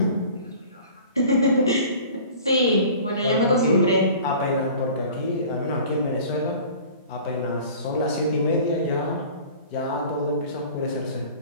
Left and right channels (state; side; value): inverted; both; correlation -0.44